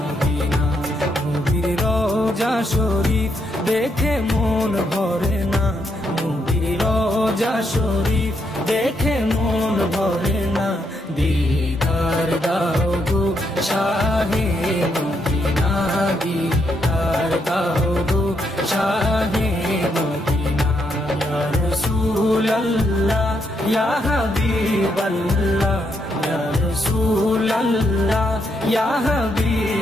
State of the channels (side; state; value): both; normal; correlation 0.78